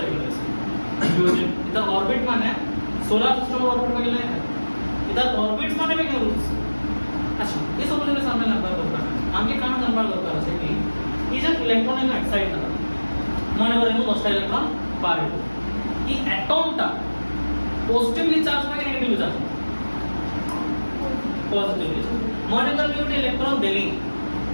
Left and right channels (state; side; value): inverted; both; correlation -1.00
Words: इधर ऑर्बिट माने सोलर सिस्टम ऑर्बिट में गेले इधर ऑर्बिट्स माने भी करू अच्छा ये सब लोग सामने लगता है आमके काम करणार दरकार असे की ई जर इलेक्ट्रॉन ने एक्साइट करा माने वर इनु 10 इलेक्ट्रॉन पार येतो ई एटॉम टा पॉजिटिवली चार्ज माने नेगेटिवली चार्ज पॉजिटिवली माने तर मी उठे इलेक्ट्रॉन देली